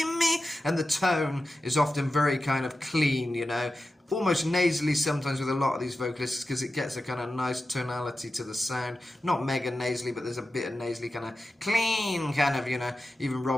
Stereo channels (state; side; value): normal; both; correlation 0.92